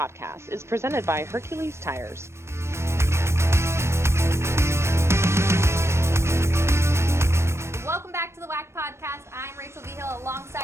is presented by Hercules Tires. Welcome back to the WAC podcast. I'm Rachel Vigil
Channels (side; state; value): left; late; 0.13 ms